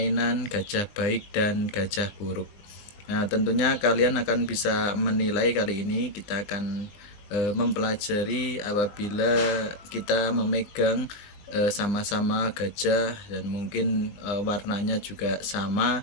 gajah baik dan gajah buruk. Nah, tentunya kalian akan bisa menilai. Kali ini kita akan mempelajari apabila kita memegang sama-sama gajah dan mungkin warnanya juga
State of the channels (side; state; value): right; late; 20 ms